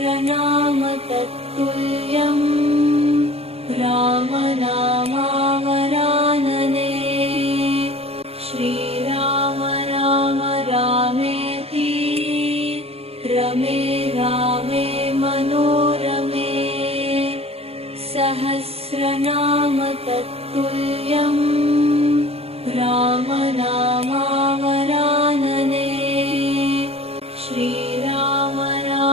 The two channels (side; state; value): left; late; 0.29 ms